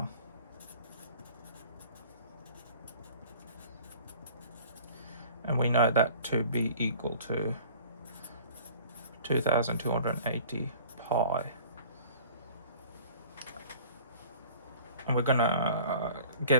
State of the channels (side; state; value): both; inverted; correlation -0.46